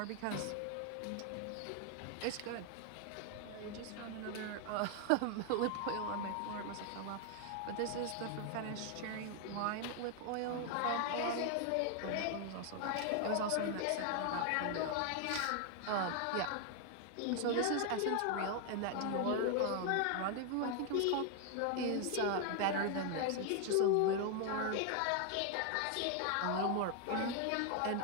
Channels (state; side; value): different; both; correlation 0.00